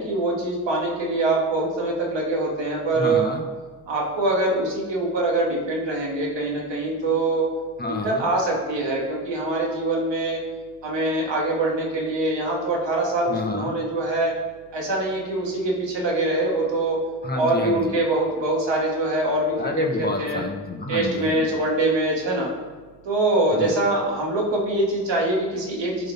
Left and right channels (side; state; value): right; noise; hum, 29 dB below the sound